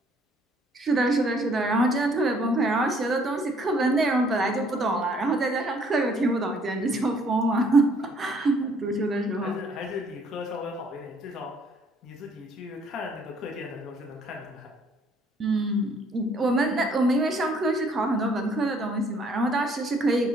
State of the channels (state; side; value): normal; both; correlation 0.63